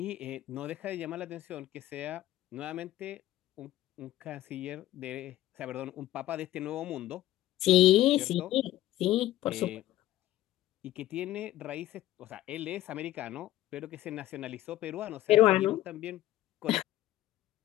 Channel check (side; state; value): right; quieter; 14.6 dB